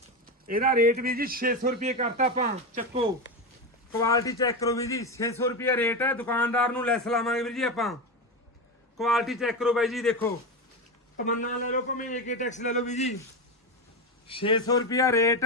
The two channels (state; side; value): normal; both; correlation 0.16